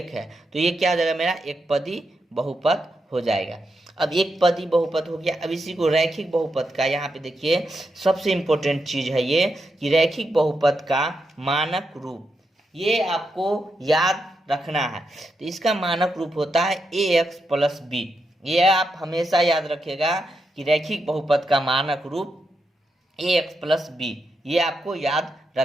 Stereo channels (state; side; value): normal; both; correlation 0.84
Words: है तो ये क्या हो जाएगा मेरा एक पदी बहुपद हो जाएगा। अब एक पदी बहुपद हो गया। अब इसी को रैखिक बहुपद का, यहाँ पे देखिए सबसे इम्पोर्टेंट चीज है ये कि रैखिक बहुपद का मानक रूप, ये आपको याद रखना है। तो इसका मानक रूप होता है ax + b। ये आप हमेशा याद रखिएगा कि रैखिक बहुपद का मानक रूप ax + b, ये आपको याद